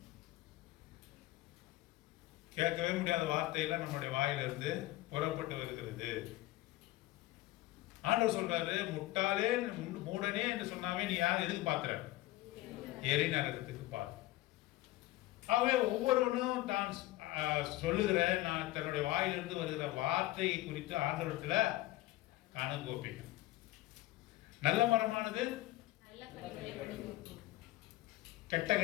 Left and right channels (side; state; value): right; quieter; 17.3 dB